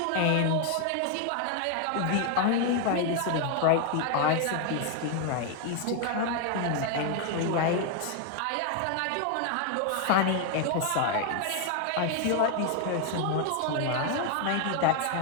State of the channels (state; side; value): different; both; correlation 0.00